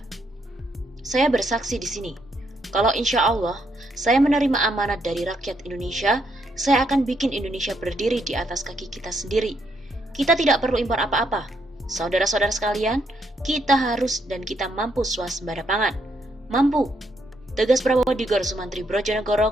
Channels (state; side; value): normal; both; correlation 0.76